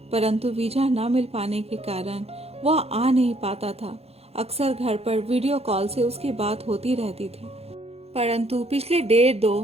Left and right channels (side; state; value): left; late; 0.29 ms